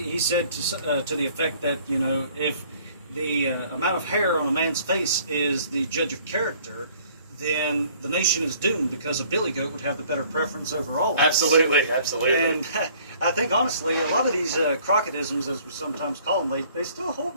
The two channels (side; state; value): both; inverted; correlation -0.57